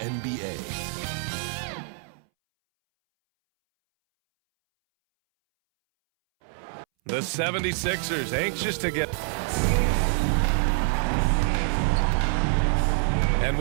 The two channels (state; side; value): silent; left; 61 dB below the other